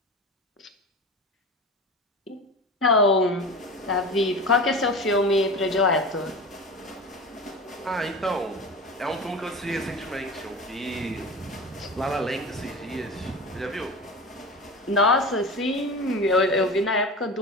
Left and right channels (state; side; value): normal; both; correlation 0.31